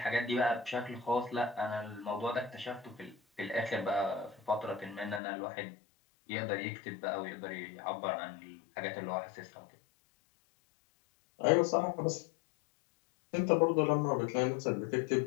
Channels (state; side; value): drops out; right; at 5.2 s